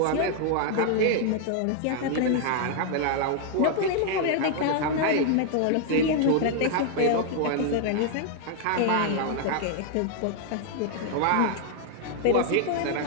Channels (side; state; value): both; different; correlation 0.00